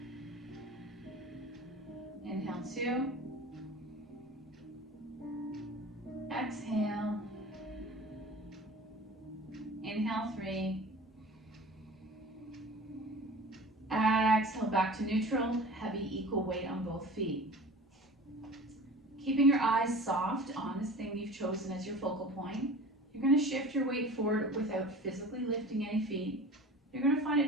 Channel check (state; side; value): normal; both; correlation 0.39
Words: Inhale 2. Exhale. Inhale 3. Exhale back to neutral, heavy equal weight on both feet. Keeping your eyes soft on this thing you've chosen as your focal point. You're going to shift your weight forward without physically lifting any feet. You're going to find